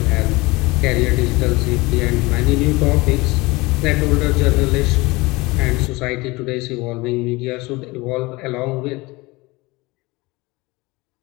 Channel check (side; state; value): right; quieter; 22.8 dB